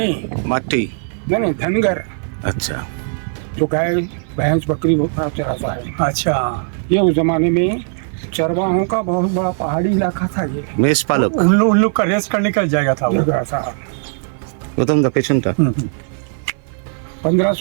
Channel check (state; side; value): silent; left; 56 dB below the other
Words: मट्टी. नहीं धनगर, अच्छा जो गाय भैंस बकरी चराता है। अच्छा ये उस जमाने में चरवाहों का बहुत बड़ा पहाड़ी इलाका था। ये मेष पालक. उन लोग का रेस्ट करने का जाएगा था वो. ऐसा প্রথম পেছনটা.